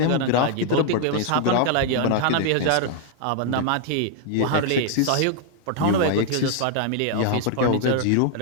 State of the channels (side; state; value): both; different; correlation 0.00